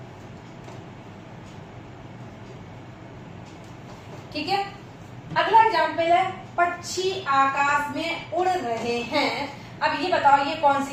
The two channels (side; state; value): both; identical; correlation 1.00